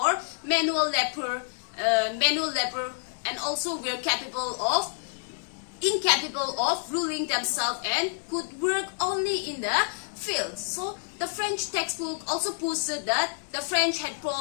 manual labor, and also were incapable of ruling themselves and could work only in the field. So the French textbook also posted that the French had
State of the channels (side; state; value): right; silent; digital silence